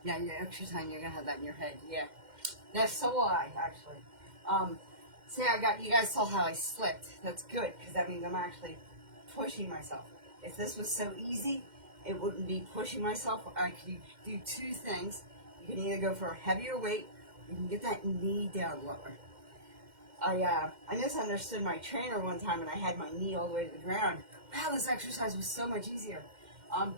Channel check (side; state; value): left; late; 2.1 ms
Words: yeah, your extra time, you're going to have that in your head. Yeah. Yeah, so will I, actually. See, you guys saw how I slipped. That's good because that means I'm actually pushing myself. If this was so easy, it wouldn't be pushing myself. I could do 2 things. You can either go for a heavier weight, or you can get that knee down lower. I misunderstood my trainer one time, and I had my knee all the way to the ground. Wow, this exercise was so much easier.